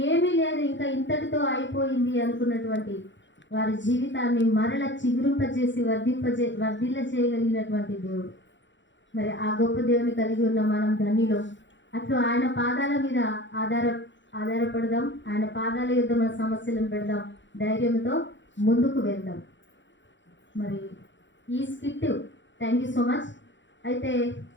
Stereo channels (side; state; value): right; late; 0.54 ms